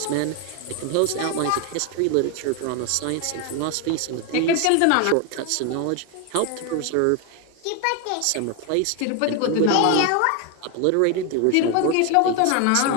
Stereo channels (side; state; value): both; different; correlation 0.01